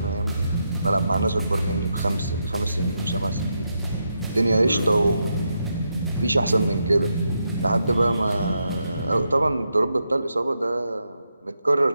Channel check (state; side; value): inverted; both; correlation -0.83